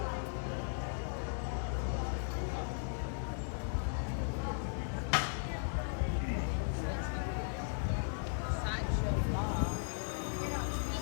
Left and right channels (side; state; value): right; silent; digital silence